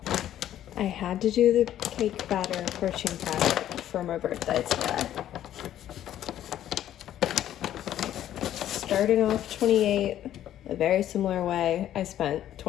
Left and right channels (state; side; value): quieter; right; 11.7 dB